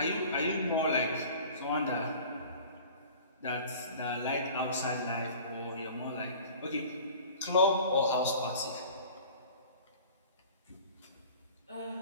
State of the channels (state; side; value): inverted; both; correlation -0.44